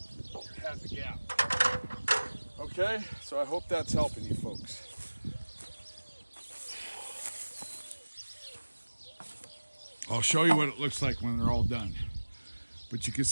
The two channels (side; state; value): both; inverted; correlation -1.00